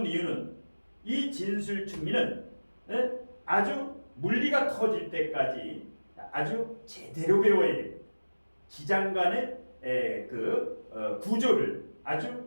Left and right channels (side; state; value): both; inverted; correlation -1.00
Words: 이유는 이 진술충미는 아주 물리가 터질 때까지 아주 제대로 배워야 됩니다. 기장간의 구조를